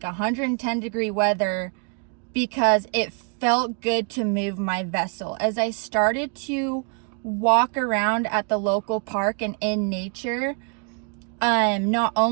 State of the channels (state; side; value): quieter; left; 37.7 dB